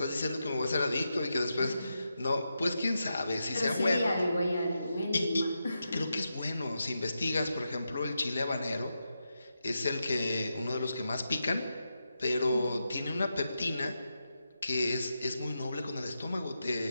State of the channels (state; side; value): inverted; both; correlation -0.87